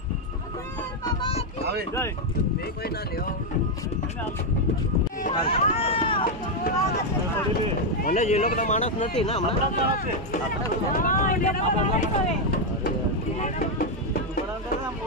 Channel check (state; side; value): normal; both; correlation 0.03